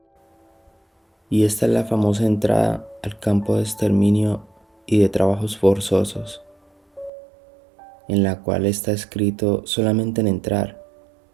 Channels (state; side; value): drops out; left; at 7.1 s